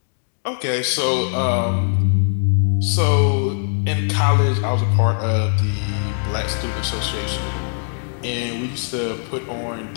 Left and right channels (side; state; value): right; silent; digital silence